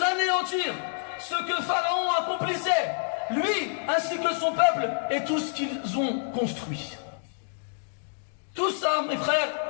anéantir ce que Pharaon accomplissait, lui ainsi que son peuple et tout ce qu'ils ont construit. Tout ça, mes frères,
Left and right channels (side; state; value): right; silent; digital silence